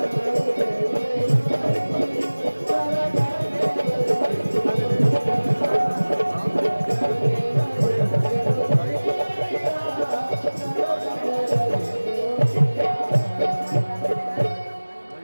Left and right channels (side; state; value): both; inverted; correlation -1.00